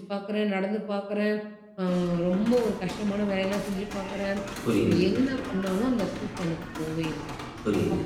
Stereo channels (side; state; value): both; identical; correlation 1.00